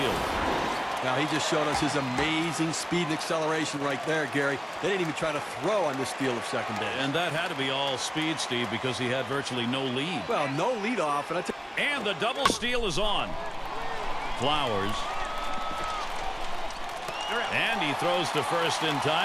Now, he just showed us his amazing speed and acceleration right there, Gary. They didn't even try to throw on this steal of second base. And that had to be all speed, Steve, because he had virtually no lead. Well, no lead off, and the double steal is on. Flowers. And he throws to first in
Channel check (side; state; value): both; identical; correlation 1.00